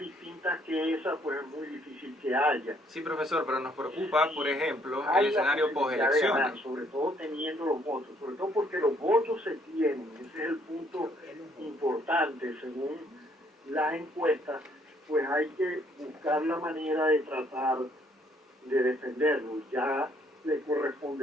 que esas, pues es muy difícil que haya. Sí, profesor, pero nos preocupa, por ejemplo, Hay el escenario postelecciones. sobre todo teniendo los votos, sobre todo porque los votos se tienen, ese es el punto importante. Según las encuestas, pues hay que buscar la manera de tratar de defenderlos. Ya le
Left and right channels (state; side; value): normal; both; correlation 0.66